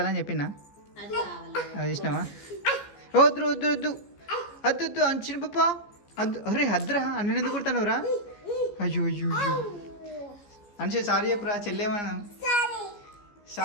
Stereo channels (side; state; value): right; late; 15 ms